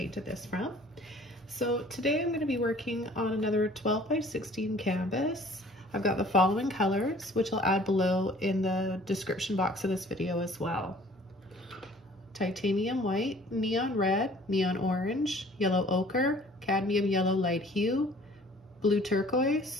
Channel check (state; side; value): normal; both; correlation 0.52